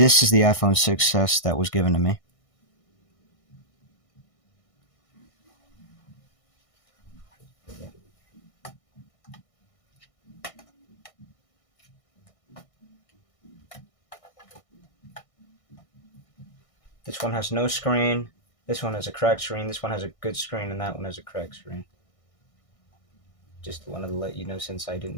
is the iPhone 6s that was given to me. This one has no screen, this one has a cracked screen, this one has a good screen, and that one has a cracked screen. Just wanted to let you know since I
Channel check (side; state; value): right; late; 1.6 ms